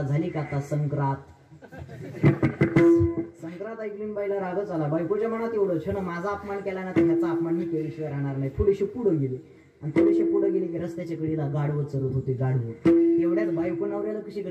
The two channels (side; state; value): both; identical; correlation 1.00